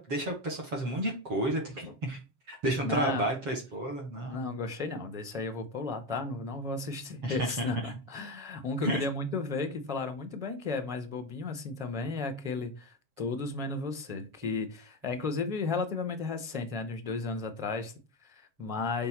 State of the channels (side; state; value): left; late; 7.3 ms